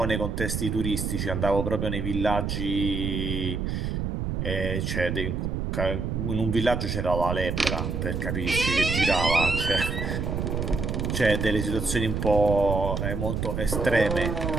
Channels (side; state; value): right; noise; rumble, 2 dB below the sound